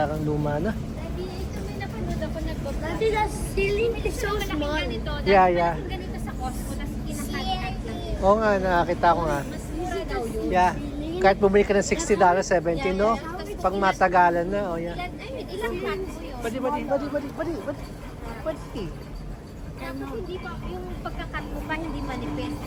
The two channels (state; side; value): identical; both; correlation 1.00